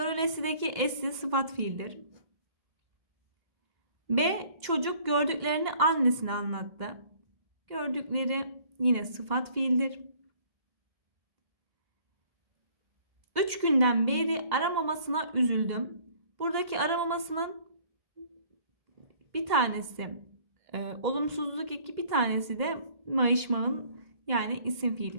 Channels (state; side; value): late; left; 2.1 ms